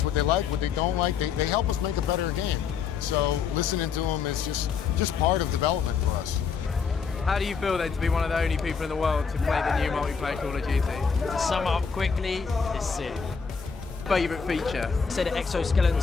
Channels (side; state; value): right; quieter; 6.0 dB